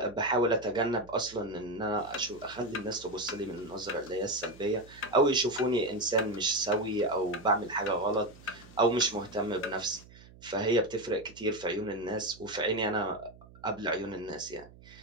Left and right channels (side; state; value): right; noise; hum, 21 dB below the sound